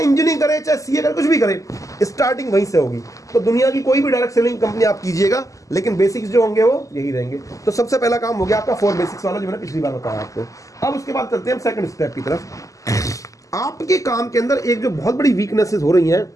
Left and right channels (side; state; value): right; late; 0.16 ms